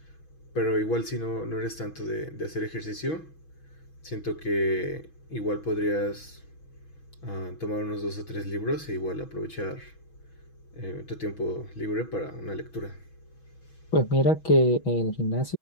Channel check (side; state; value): right; late; 6.2 ms